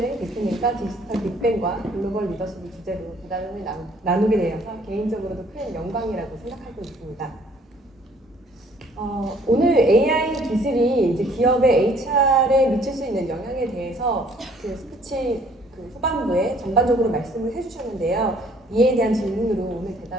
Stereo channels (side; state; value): both; normal; correlation 0.59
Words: 디지털 빅뱅과 글로벌 리더십을 주제로 대담을 나누게 되어서 개인적으로도 큰 영광이라고 생각하고 있습니다. 오늘 AI 기술이 이제 기업의 HR에 미칠 수 있는 영향에 대해서 스피치 후반부에 전반적으로 말씀을 해주셨는데요. 이에 대한 질문으로 오늘